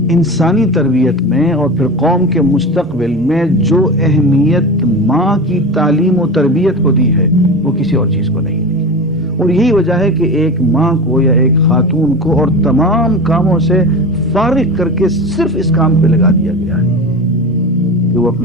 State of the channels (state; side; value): normal; both; correlation 0.27